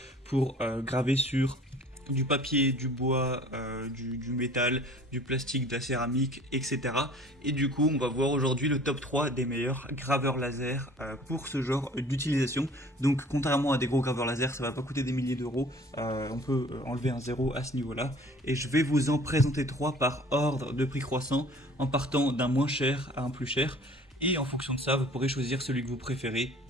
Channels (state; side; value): normal; both; correlation 0.49